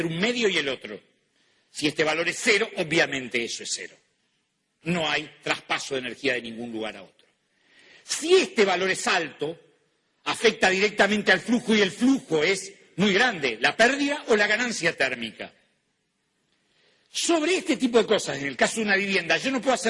un medio y el otro. Si este valor es 0, obviamente eso es 0. No hay traspaso de energía de ningún lugar a otro. Si este valor es alto, afecta directamente al flujo y el flujo es muy grande, la pérdida o la ganancia térmica. Sobre este tipo de cosas, en el caso de una vivienda, yo no puedo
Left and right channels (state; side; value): identical; both; correlation 1.00